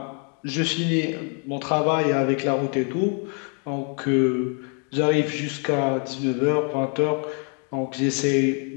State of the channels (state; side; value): quieter; right; 39.6 dB